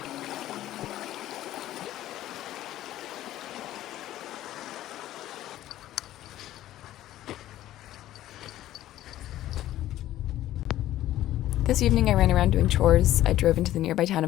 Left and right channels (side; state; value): right; quieter; 13.8 dB